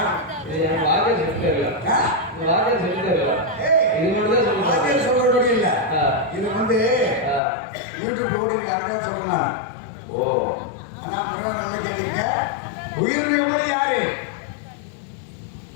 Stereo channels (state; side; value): drops out; right; at 7.4 s